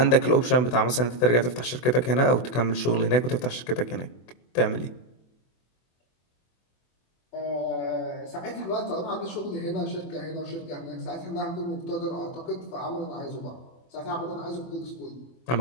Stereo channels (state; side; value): late; right; 24 ms